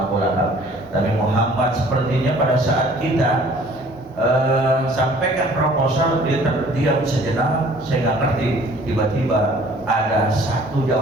Lahab. Tapi Muhammad sepertinya pada saat kita sampaikan proposal, dia terdiam sejenak. Saya nggak ngerti. Tiba-tiba ada satu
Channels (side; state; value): both; normal; correlation 0.53